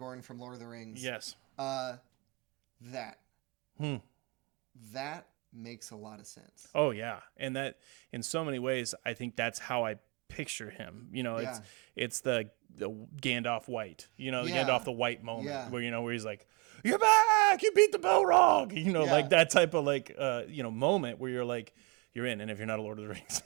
from Lord of the Rings. Yes. That. That makes a lot of sense. Oh yeah. And that in so many ways, I think that's how I picture him. It's the Gandalf white, the Gandalf the white moment where he's like, "You're back, you beat the Balrog," like that type of moment where you're like, you're in. And if you're not a Lord of the Rings,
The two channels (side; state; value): left; quieter; 28.7 dB